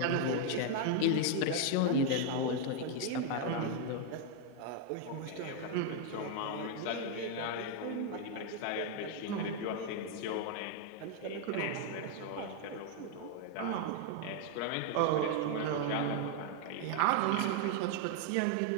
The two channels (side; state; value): both; different; correlation 0.00